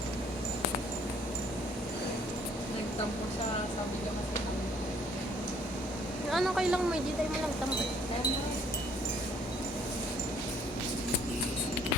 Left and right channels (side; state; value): both; normal; correlation 0.61